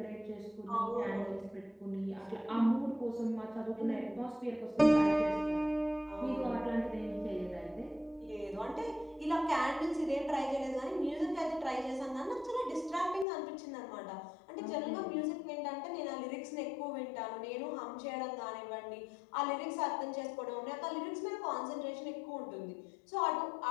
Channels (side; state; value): right; drops out; at 13.2 s